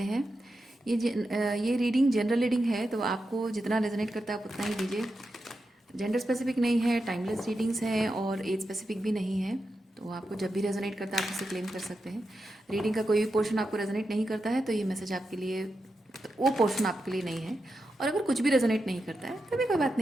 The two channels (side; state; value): both; normal; correlation 0.88